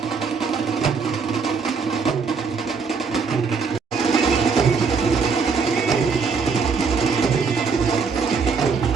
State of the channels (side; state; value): left; quieter; 5.2 dB